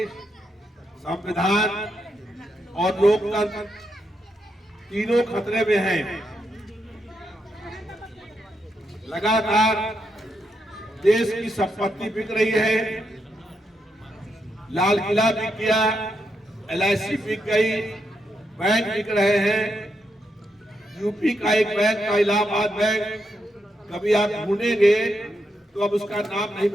संविधान और लोकतंत्र तीनों खतरे में हैं। लगातार देश की संपत्ति बिक रही है, लाल किला बिक गया, LIC बिक गई, बैंक बिक रहे हैं। यूपी का एक बैंक था इलाहाबाद बैंक, कभी आप ढूंढेंगे तो अब उसका नाम नहीं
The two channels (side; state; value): both; normal; correlation 0.82